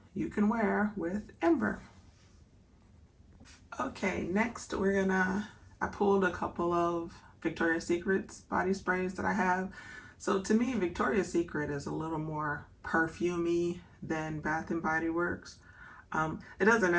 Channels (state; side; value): identical; both; correlation 1.00